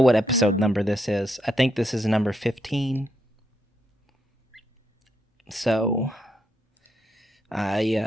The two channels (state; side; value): normal; both; correlation 0.79